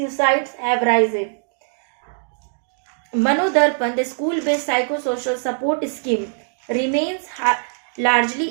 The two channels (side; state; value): left; silent; digital silence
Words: have risen. Manodarpan, the school-based psychosocial support scheme, remains largely